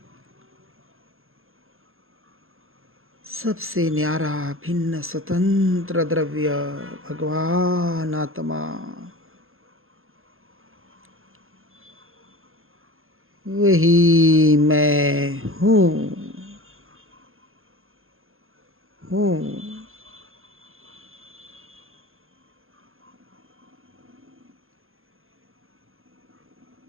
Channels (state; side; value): late; left; 0.61 ms